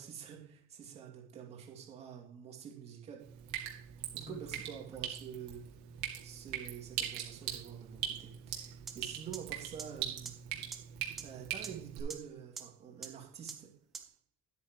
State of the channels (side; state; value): left; quieter; 9.0 dB